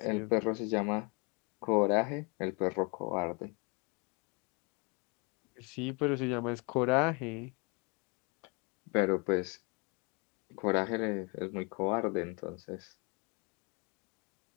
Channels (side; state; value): right; quieter; 32.1 dB